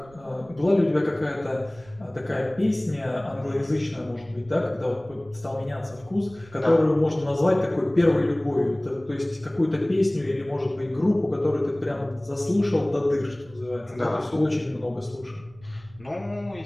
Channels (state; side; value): noise; right; rumble, 24 dB below the sound